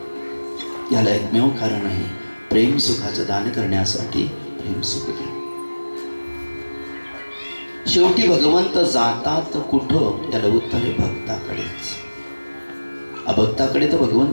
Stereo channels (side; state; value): both; inverted; correlation -1.00